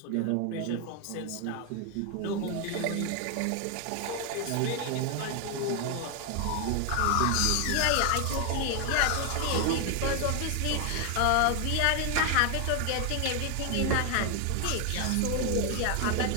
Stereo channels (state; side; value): different; both; correlation 0.01